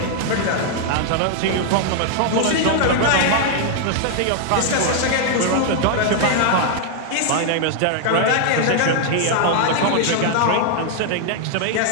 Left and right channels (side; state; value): both; different; correlation 0.00